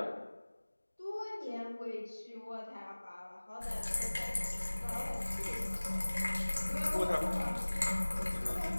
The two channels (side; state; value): both; inverted; correlation -1.00